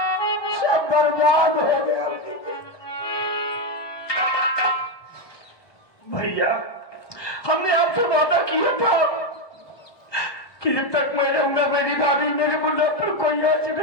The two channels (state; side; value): late; right; 1.2 ms